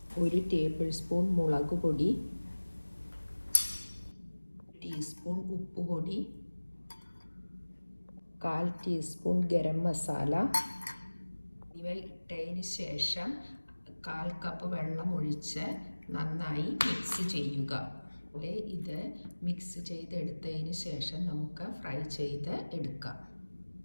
1 ടേബിൾ സ്പൂൺ മുളക് പൊടി, 1 ടീസ്പൂൺ ഉപ്പുപൊടി, 1/4 ടീസ്പൂൺ ഗരം മസാല ഇവ ഇട്ടതിന് ശേഷം 1/4 കപ്പ് വെള്ളം ഒഴിച്ച് നന്നായി മിക്സ് ചെയ്യുക. ഇത് മിക്സ് ചെയ്തെടുത്തതിന് ശേഷം നമുക്ക് ഫ്രൈ ചെയ്ത് എടുക്കാം.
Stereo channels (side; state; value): both; inverted; correlation -1.00